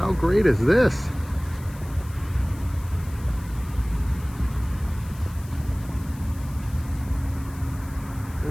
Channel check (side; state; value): left; noise; hiss, 21 dB below the sound